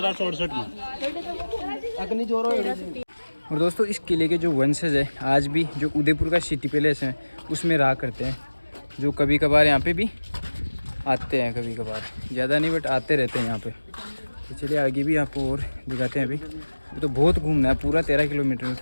में अग्नि जोरो। और दोस्तों इस किले के जो वंशज है आज भी जो उदयपुर का सिटी पैलेस है उसमें रहा करते हैं, जो कभी कभार यहाँ पे भी आते हैं, कभी कभार ज़्यादा नहीं बट आते रहते हैं यहाँ पे। तो चलिए आगे भी आपको और दिखाते हैं। अभी तो बहुत घूमना है, पूरा 13 किलोमीटर में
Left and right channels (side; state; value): both; inverted; correlation -1.00